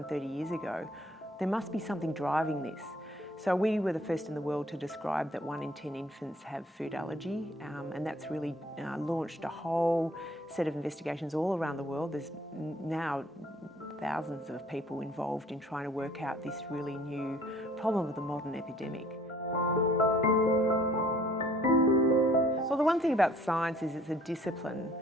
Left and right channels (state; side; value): normal; both; correlation 0.57